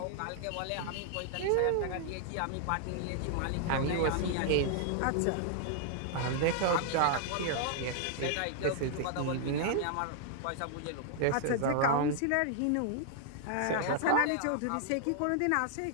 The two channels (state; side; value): different; both; correlation -0.01